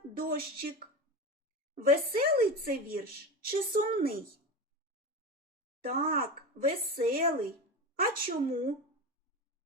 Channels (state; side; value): normal; both; correlation 0.24